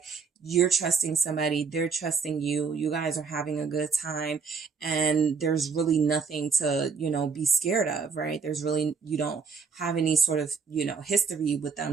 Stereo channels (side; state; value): left; quieter; 5.5 dB